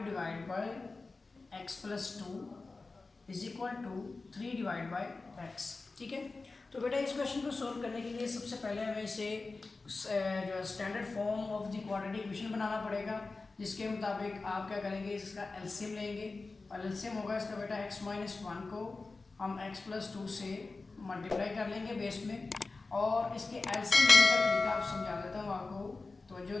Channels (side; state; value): right; quieter; 3.7 dB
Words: divide by x plus 2 is equal to 3 divide by x, ठीक है। तो बेटा इस क्वेश्चन को सोल्व करने के लिए सबसे पहले हमें इसे जो standard form of the quadratic equation बनाना पड़ेगा, जिसके मुताबिक आप क्या करेंगे, इसका एलसीएम लेंगे और एलसीएम होगा इसका बेटा x माइनस 1 को हम x प्लस 2 से मल्टीप्लाई कर लेंगे बेस में। और इसके एलसीएम लेने का तरीका आप समझा देता हूँ आपको, तो जो